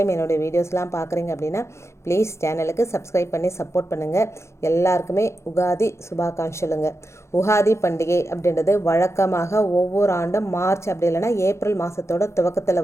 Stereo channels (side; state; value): right; late; 0.13 ms